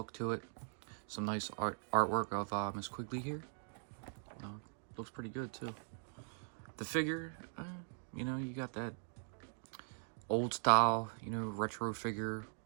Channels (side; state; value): left; silent; digital silence